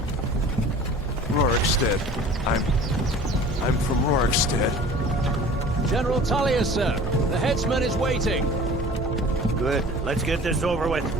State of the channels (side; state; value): both; normal; correlation 0.43